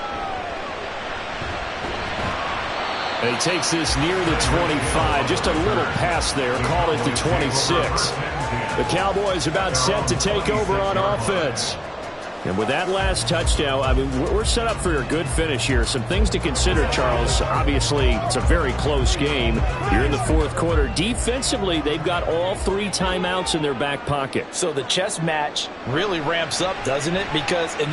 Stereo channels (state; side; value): identical; both; correlation 1.00